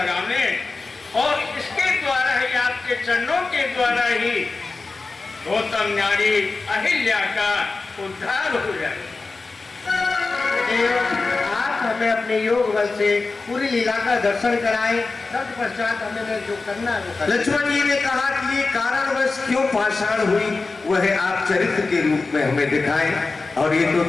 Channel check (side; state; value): right; quieter; 3.8 dB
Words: और इसके द्वारा ही, आपके चरणों के द्वारा ही गौतम नारी अहिल्या का उद्धार हो जाए। आप हमें अपने योग बल से पूरी लीला का दर्शन कराएं, तत्पश्चात हमें जो करना है वो करें। लक्ष्मण जी ने कहा कि ये कारणवश क्यों पाषाण हुई वह आप चरित्र के रूप में हमें दिखाएं, और ये तो